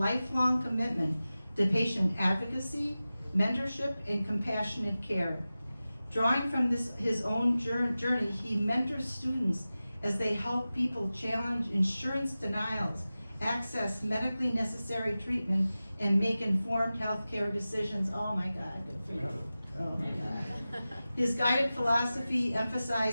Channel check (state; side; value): inverted; both; correlation -0.95